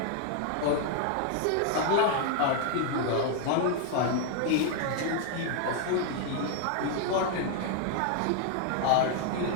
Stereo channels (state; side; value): different; both; correlation 0.00